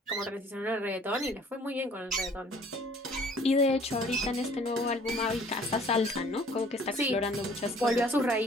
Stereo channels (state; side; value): normal; both; correlation 0.55